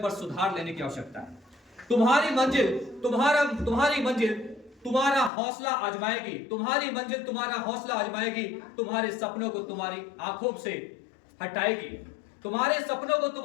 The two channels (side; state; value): right; drops out; at 5.3 s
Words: सुधार लेने की आवश्यकता है। तुम्हारी मंजिल तुम्हारा हौसला आजमाएगी, तुम्हारी मंजिल तुम्हारा हौसला आजमाएगी, तुम्हारे सपनों को तुम्हारी आंखों से हटाएगी, तुम्हारे सपनों को